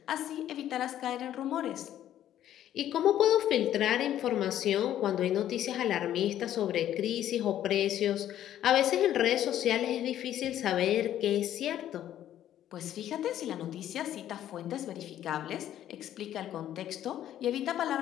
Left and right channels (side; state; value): right; quieter; 11.6 dB